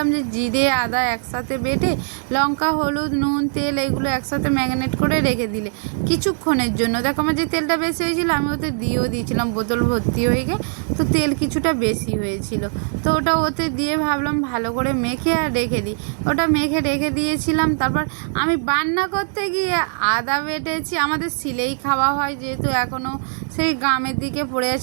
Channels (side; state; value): left; silent; 60 dB below the other